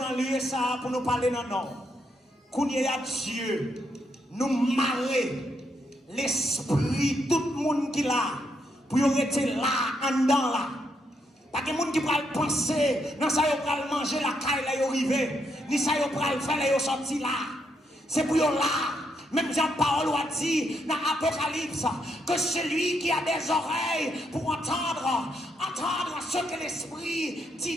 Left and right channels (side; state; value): both; normal; correlation 0.77